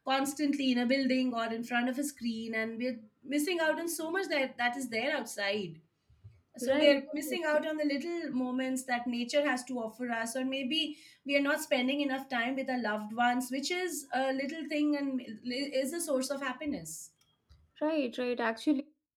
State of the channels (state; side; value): identical; both; correlation 1.00